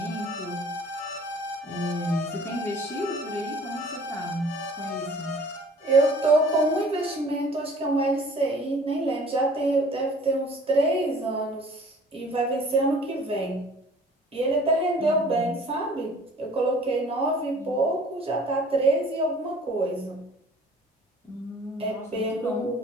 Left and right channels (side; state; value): both; normal; correlation 0.50